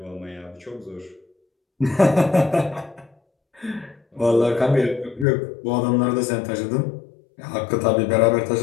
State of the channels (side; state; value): right; drops out; at 5.2 s